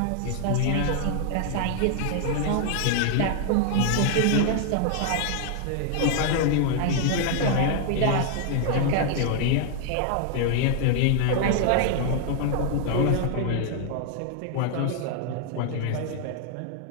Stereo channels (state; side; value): different; both; correlation 0.00